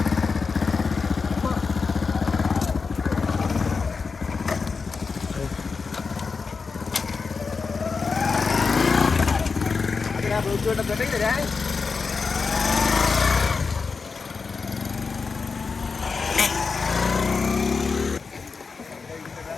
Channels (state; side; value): quieter; right; 4.8 dB